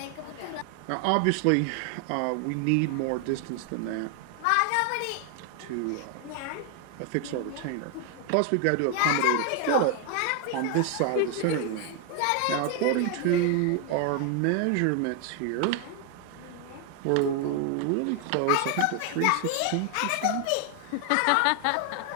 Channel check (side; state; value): both; different; correlation 0.00